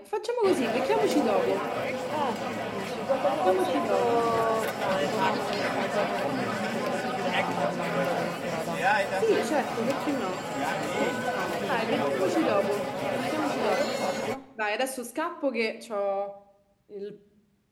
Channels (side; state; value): both; identical; correlation 1.00